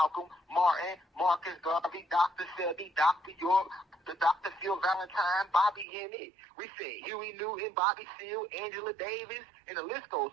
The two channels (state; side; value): drops out; left; at 5.9 s